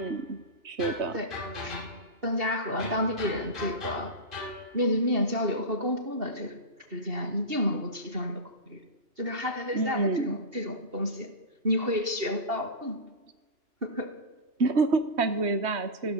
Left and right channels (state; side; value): late; left; 2.7 ms